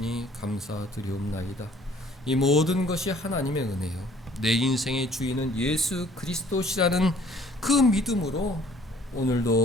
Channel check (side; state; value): both; normal; correlation 0.57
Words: 감사드리옵나이다. 이 모든 것이 하나님의 은혜요, 내 인생의 주인은 예수 그리스도시라는 그 믿음으로